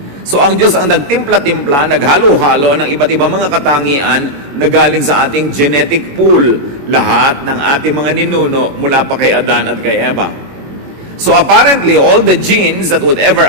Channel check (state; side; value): late; left; 21 ms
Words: So ang Diyos ang nagtimpla-timpla, naghalo-halo ng iba't ibang mga katangian na galing sa ating genetic pool, lahat ng ating mga ninuno mula pa kay Adan at kay Eva. So apparently, all the genes that would